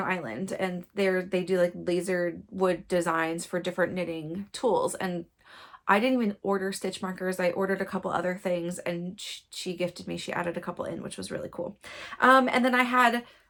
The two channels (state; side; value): identical; both; correlation 1.00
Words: Island, and they do like laser wood designs for different knitting tools. And I didn't even order stitch markers. I ordered a couple other things, and she gifted me. She added a couple in, which was really cool. And then I had